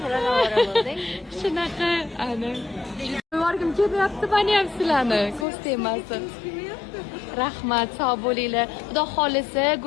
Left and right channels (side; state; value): right; drops out; at 5.5 s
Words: bilan ovora bo'ldik. Shunaqa, ana. Borgim kelyapti meni ham sizlarni, ko'z tegmasin. Rahmat, sog' bo'linglar. Xudo xolisa,